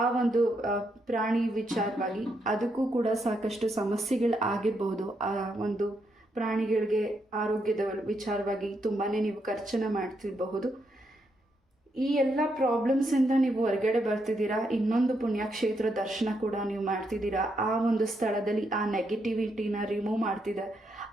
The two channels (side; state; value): both; normal; correlation 0.79